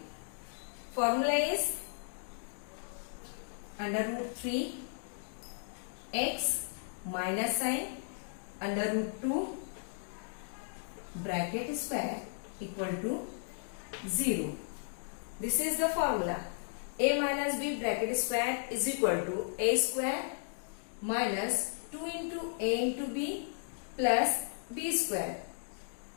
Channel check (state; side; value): silent; right; digital silence